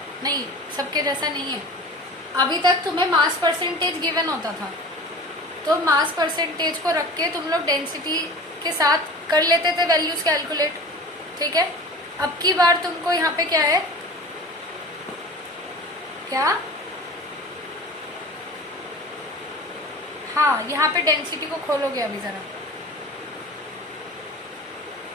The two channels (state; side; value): normal; both; correlation 0.38